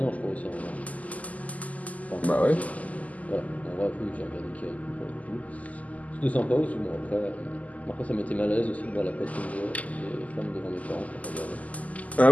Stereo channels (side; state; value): right; late; 0.074 ms